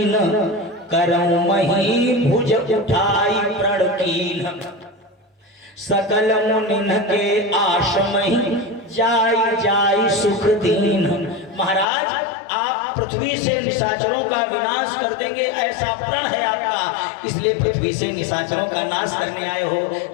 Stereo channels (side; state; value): right; drops out; at 11.9 s